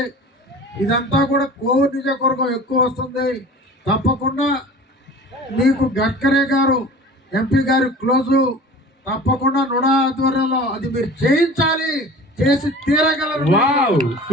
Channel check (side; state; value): both; normal; correlation 0.41